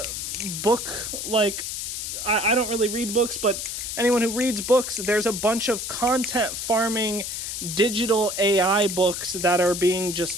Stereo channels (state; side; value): noise; left; hiss, 5 dB below the sound